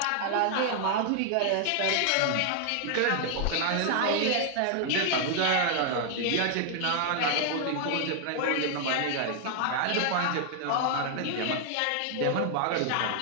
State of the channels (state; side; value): different; both; correlation 0.00